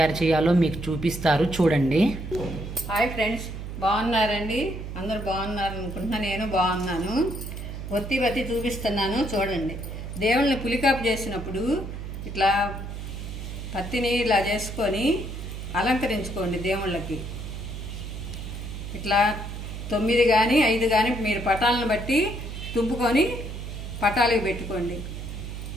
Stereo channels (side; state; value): right; noise; hum, 8 dB below the sound